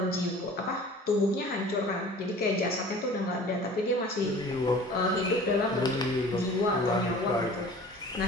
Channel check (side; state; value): both; normal; correlation 0.44